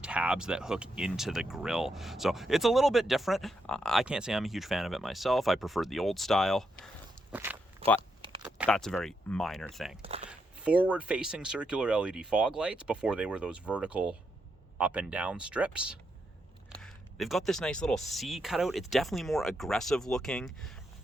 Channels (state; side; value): normal; both; correlation 0.81